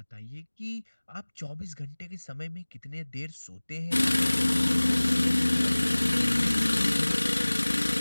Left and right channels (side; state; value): both; inverted; correlation -1.00